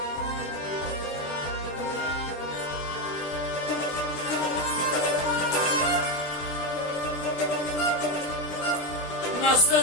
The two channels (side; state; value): right; late; 20 ms